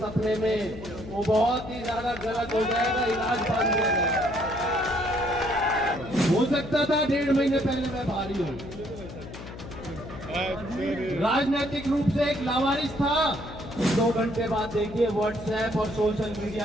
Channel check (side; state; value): left; noise; hum, 13 dB below the sound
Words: में, वो बहुत ही ज्यादा गलत हो जाएगा, इलाज बंद हो जाएगा। हो सकता था 1.5 महीने पहले मैं भारी हूँ, राजनीतिक रूप से एक लावारिस था। 2 घंटे बाद देखिए व्हाट्सएप और सोशल